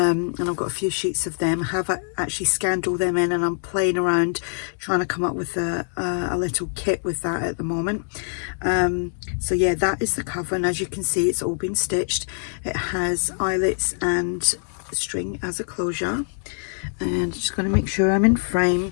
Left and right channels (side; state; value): right; silent; digital silence